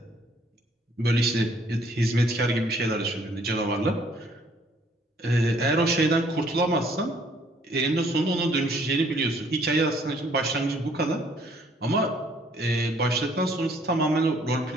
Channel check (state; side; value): normal; both; correlation 0.62